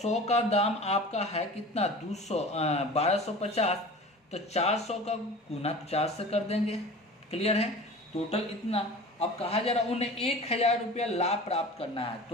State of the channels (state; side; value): normal; both; correlation 0.39